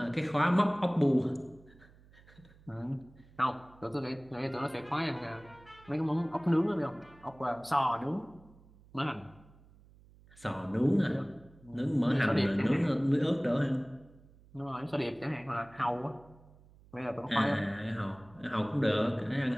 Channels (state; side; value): noise; right; hum, 25 dB below the sound